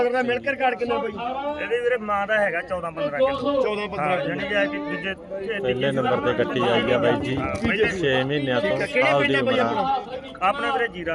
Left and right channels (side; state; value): both; identical; correlation 1.00